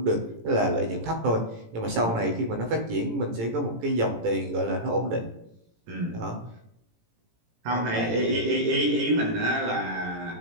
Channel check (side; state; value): left; late; 18 ms